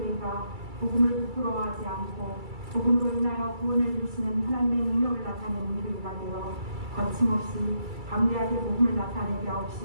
복음을 부끄러워하지 않고 복음으로 인하여 구원을 이루시는 하나님의 능력을 나타내는 교회가 되어 거침없이 담대하게 복음을 나타내게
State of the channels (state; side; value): late; left; 2.3 ms